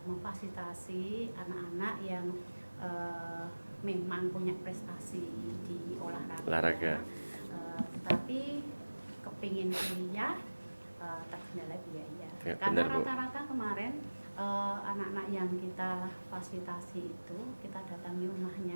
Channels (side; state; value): both; inverted; correlation -1.00